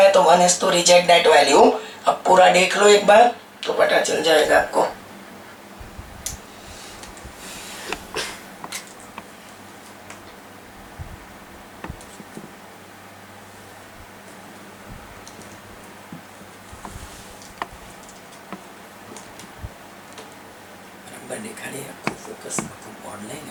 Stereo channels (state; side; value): identical; both; correlation 1.00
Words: तो 1 has to reject that value. अब पूरा देख लो एक बार तो पता चल जाएगा आपको. दिखा रही है आपको, फोकस ऑनलाइन है,